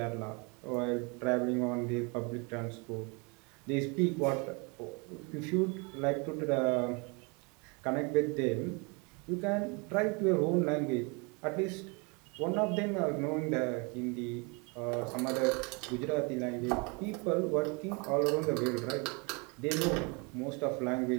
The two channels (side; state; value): left; quieter; 31.2 dB